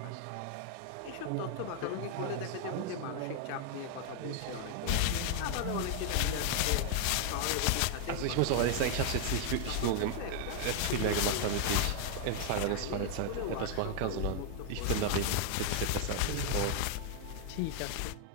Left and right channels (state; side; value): different; both; correlation 0.00